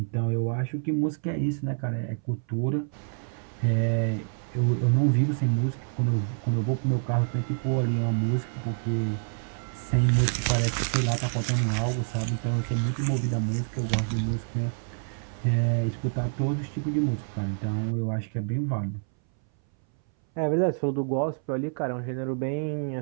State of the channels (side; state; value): left; silent; 60 dB below the other